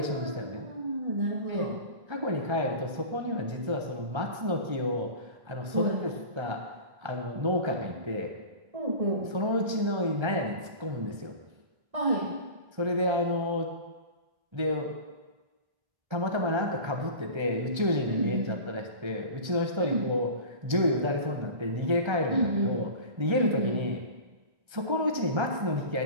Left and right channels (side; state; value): left; late; 1.3 ms